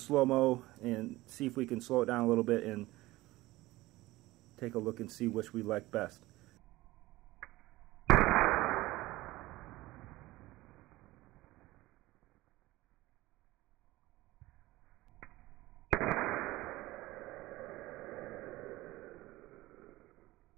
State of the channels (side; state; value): left; quieter; 18.6 dB